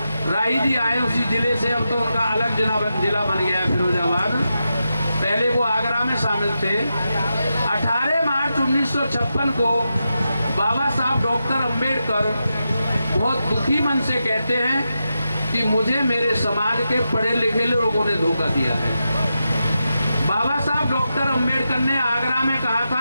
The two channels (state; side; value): inverted; both; correlation -0.88